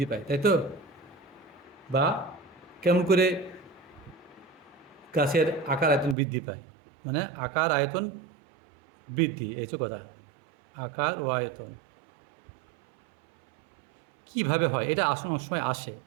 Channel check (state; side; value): drops out; left; at 6.2 s